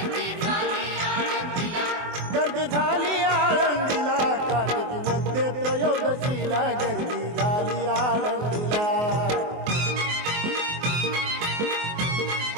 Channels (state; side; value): late; left; 24 ms